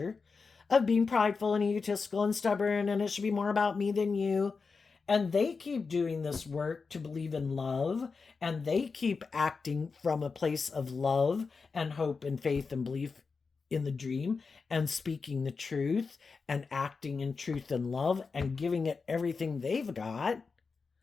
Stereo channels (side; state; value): right; quieter; 4.8 dB